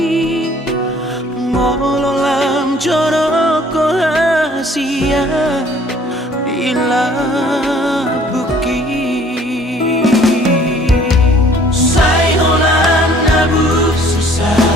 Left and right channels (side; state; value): both; normal; correlation 0.56